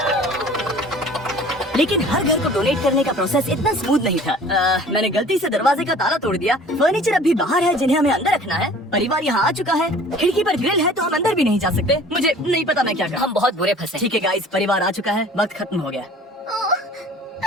लेकिन हर घर को डोनेट करने का प्रोसेस इतना स्मूथ नहीं था। मैंने गलती से दरवाजे का ताला तोड़ दिया। फर्नीचर अब भी बाहर है, जिन्हें हमें अंदर रखना है। परिवार यहाँ आ चुका है। खिड़की पर ग्रिल है, तो हम अंदर भी नहीं जा सकते। मुझे नहीं पता मैं क्या करूं। हम बहुत बुरे फंसे। ठीक है गाइस, परिवार आ चुका है, वक्त खत्म हो गया।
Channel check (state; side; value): normal; both; correlation 0.48